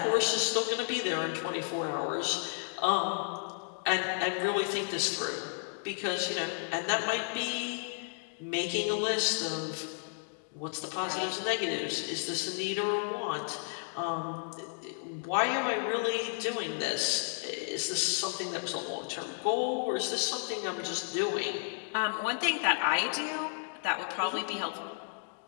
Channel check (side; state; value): right; silent; 56 dB below the other